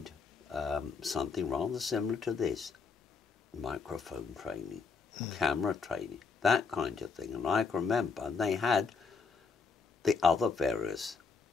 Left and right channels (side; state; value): right; quieter; 5.0 dB